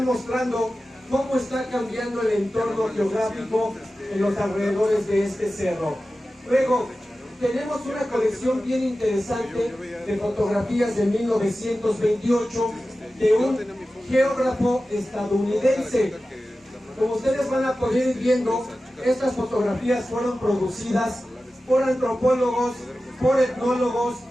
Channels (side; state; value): both; normal; correlation 0.94